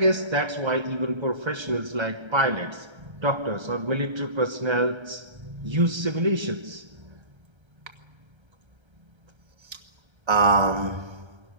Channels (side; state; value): left; late; 1.3 ms